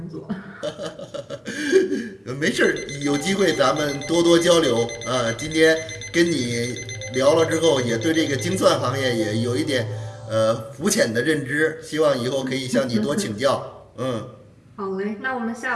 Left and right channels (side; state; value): both; identical; correlation 1.00